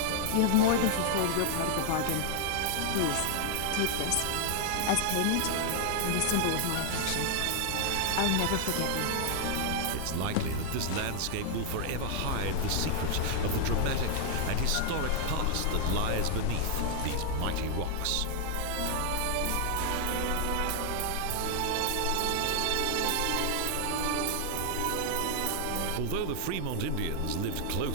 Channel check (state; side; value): different; both; correlation 0.00